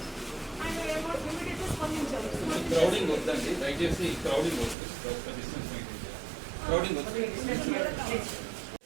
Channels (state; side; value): drops out; left; at 4.8 s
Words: ఆయన ఏమో ఇమీడియట్గా స్పందించారు. క్రౌడింగ్ వద్దండి, దయచేసి క్రౌడింగ్ వద్దు, డిస్టెన్స్ మెయింటైన్ చేయాలి. క్రౌడింగ్ వద్దు.